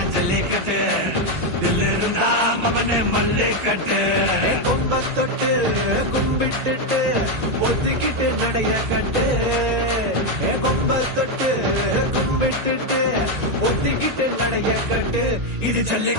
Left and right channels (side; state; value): left; late; 1.9 ms